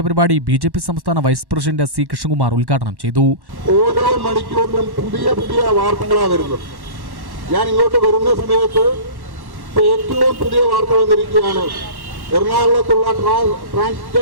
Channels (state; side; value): late; left; 1.1 ms